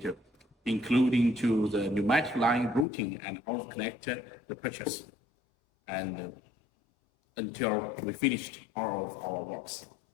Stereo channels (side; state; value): right; drops out; at 2.9 s